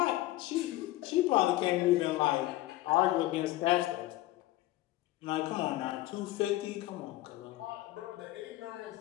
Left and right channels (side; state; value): right; quieter; 16.6 dB